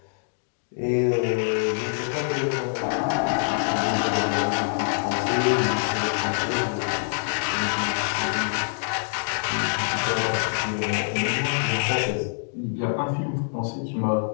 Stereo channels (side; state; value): right; silent; digital silence